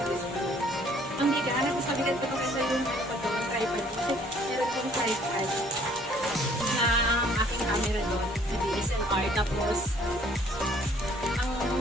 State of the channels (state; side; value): normal; both; correlation 0.59